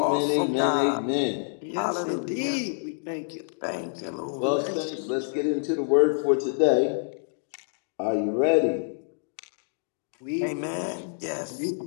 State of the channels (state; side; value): silent; right; digital silence